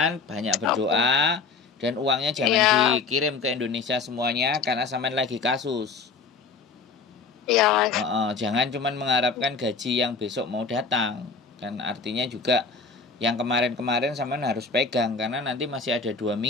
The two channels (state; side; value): quieter; right; 4.6 dB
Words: banyak berdoa dan uangnya jangan dikirim ke Indonesia semuanya karena sampean lagi kasus. Iya, Mas. Jangan cuman mengharapkan gaji yang besok mau datang. Kan artinya juga yang kemarin-kemarin sampean harus pegang karena nanti masih ada 2